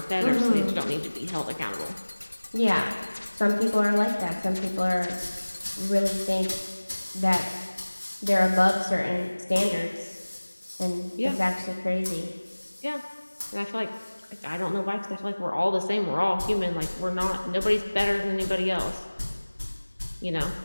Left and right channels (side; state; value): both; inverted; correlation -1.00